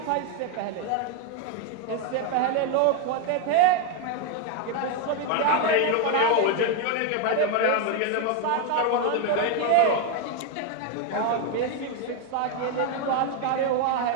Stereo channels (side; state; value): both; different; correlation 0.01